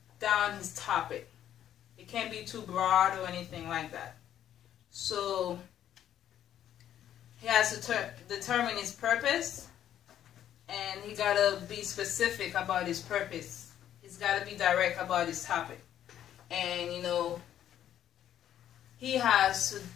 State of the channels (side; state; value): right; quieter; 10.8 dB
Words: down his topic. It can't be too broad or anything like that. So he has to determine his purpose, and he got to be specific about his purpose. He's got to be direct about his topic. And, you know, he has to